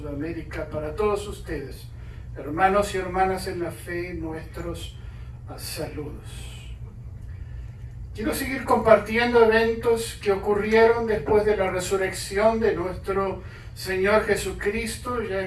para todos ustedes, hermanos y hermanas en la fe, nuestros saludos. Quiero seguir compartiendo eventos que ocurrieron después de la resurrección de nuestro Señor Jesucristo. Ya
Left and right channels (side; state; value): both; identical; correlation 1.00